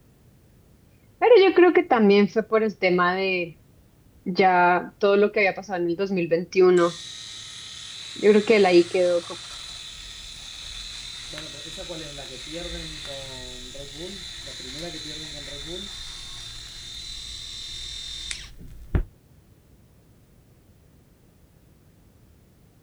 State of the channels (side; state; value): both; identical; correlation 1.00